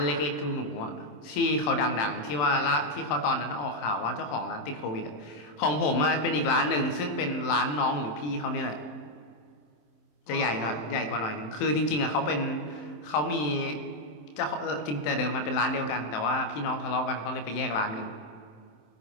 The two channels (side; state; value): right; late; 27 ms